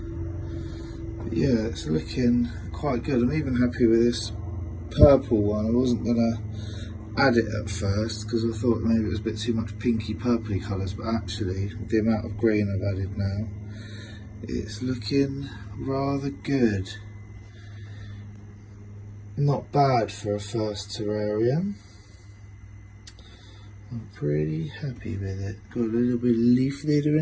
yeah, it's looking quite good. I'm even happy with this purple one. I wasn't going to add it at first because I thought maybe it was a bit too much pinky purpley colours, but actually with the amount of green I've added now, it's looking rather good. Not bad for a first terrarium. I'm pretty happy with it. Got a little bit of leaf litter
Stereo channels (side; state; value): both; identical; correlation 1.00